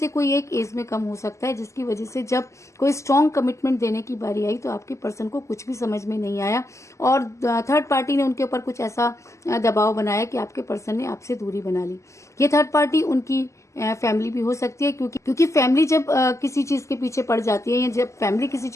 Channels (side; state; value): right; late; 0.14 ms